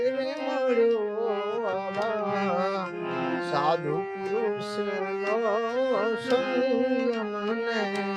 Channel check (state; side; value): identical; both; correlation 1.00